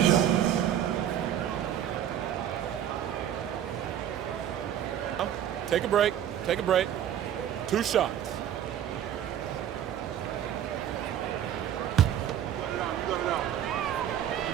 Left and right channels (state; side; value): quieter; left; 10.4 dB